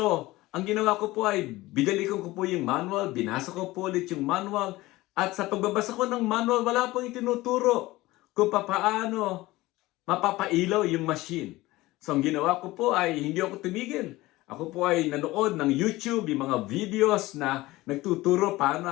ang ginawa ko po ay binalikan ko po yung manual, binasa ko po ulit yung manual, at sa pagbabasa ko ng manual, wala pong itinuturo kung paano mapapailaw yung machine. So, ang ginawa ko po ay hindi ako tumigil. Ako po ay nanood ng YouTube, yung mga videos na nagtuturo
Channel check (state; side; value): quieter; right; 18.9 dB